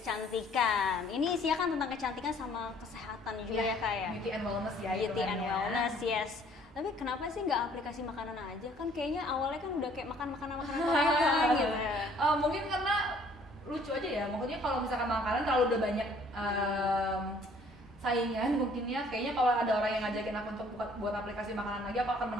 Ini isinya kan tentang kecantikan sama kesehatan juga ya Kak ya. Beauty and wellness ya. Beauty and wellness, yes. Tapi kenapa sih nggak aplikasi makanan aja? Kan kayaknya awalnya kan udah kayak makan makanan Korea gitu. Mungkin karena lucu aja ya. Maksudnya kalau misalkan makanan terlalu udah banyak saingan, mungkinnya kayaknya kalau ada orang yang ngajakin aku untuk buat aplikasi makanan lagi, aku akan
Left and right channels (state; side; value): normal; both; correlation 0.58